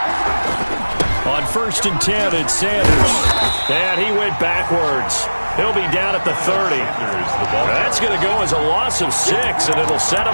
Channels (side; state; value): both; inverted; correlation -1.00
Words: On 1st and 10, it's Sanders. And he went backwards. He'll be down at the 30. That's going to go as a loss of 6, and it'll set